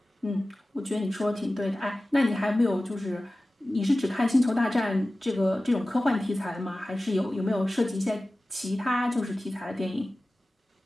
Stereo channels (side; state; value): both; normal; correlation 0.96